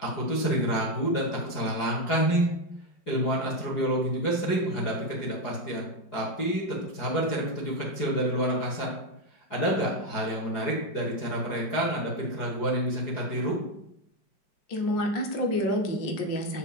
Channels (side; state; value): right; late; 4.8 ms